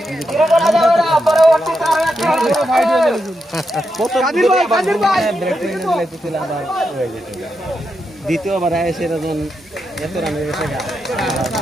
দ্বিতীয়বার এসে এত রানের গেছে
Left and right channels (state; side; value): normal; both; correlation 0.85